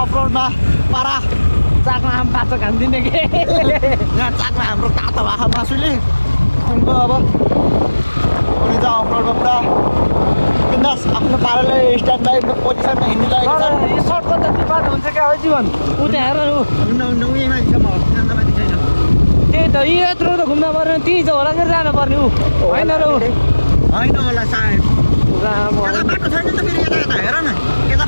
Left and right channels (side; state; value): both; inverted; correlation -1.00